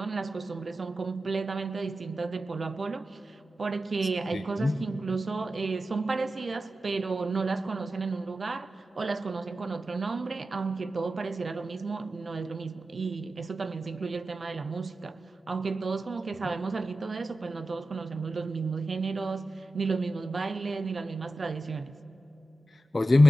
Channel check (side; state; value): both; normal; correlation 0.92